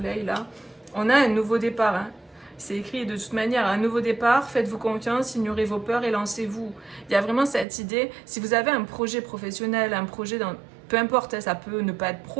là. On a un nouveau départ, hein. C'est écrit de toute manière, un nouveau départ, faites-vous confiance, ignorez vos peurs et lancez-vous. Il y a vraiment cette idée, si vous avez un projet professionnel, un projet, peu importe, hein, ça peut ne pas être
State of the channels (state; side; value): drops out; left; at 7.7 s